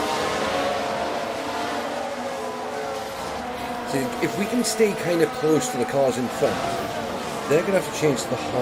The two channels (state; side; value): identical; both; correlation 1.00